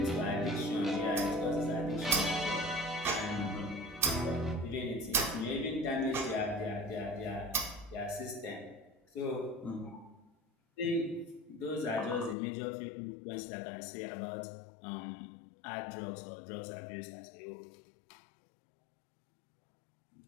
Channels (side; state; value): right; drops out; at 12.4 s